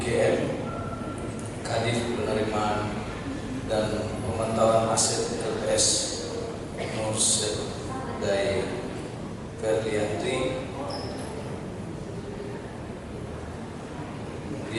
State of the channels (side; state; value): both; identical; correlation 1.00